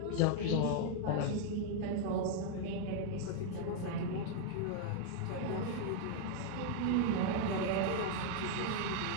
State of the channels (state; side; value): different; both; correlation -0.01